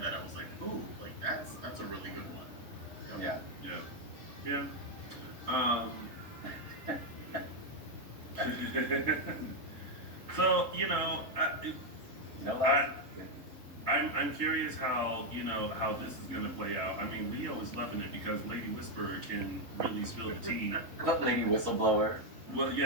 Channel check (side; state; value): left; late; 3.9 ms